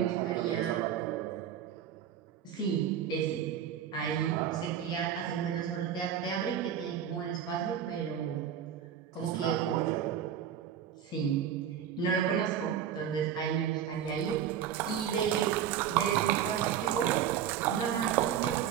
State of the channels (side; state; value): left; quieter; 9.2 dB